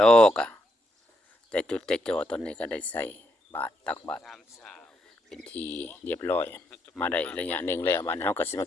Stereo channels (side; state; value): both; normal; correlation 0.78